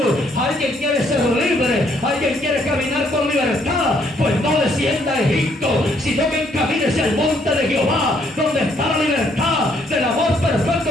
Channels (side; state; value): both; normal; correlation 0.68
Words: Alguien quiere ser libre, alguien quiere caminar con libertad, pues no descienda a Egipto, sino que encamínese al monte de Jehová, donde está la libertad del amor perfecto,